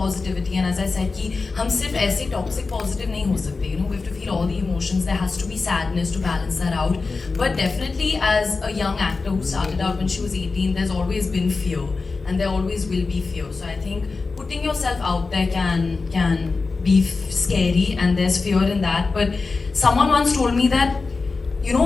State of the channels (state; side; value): quieter; right; 4.1 dB